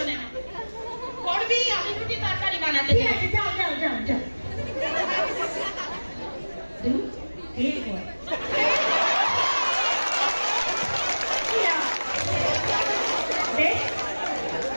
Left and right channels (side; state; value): both; inverted; correlation -1.00